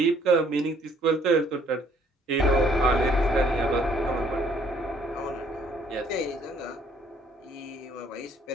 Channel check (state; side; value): normal; both; correlation 0.63